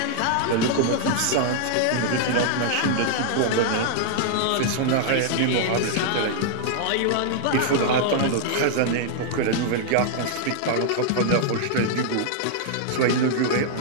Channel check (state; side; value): different; both; correlation 0.00